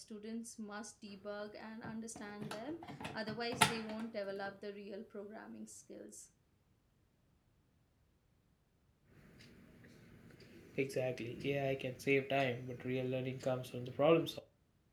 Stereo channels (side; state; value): both; identical; correlation 1.00